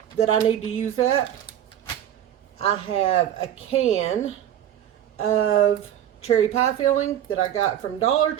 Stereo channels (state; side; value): quieter; left; 10.8 dB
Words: that I need to use up. I have a can of cherry pie filling that I got from Dollar